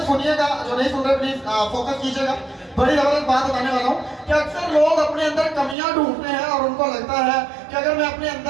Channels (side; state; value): left; drops out; at 5.8 s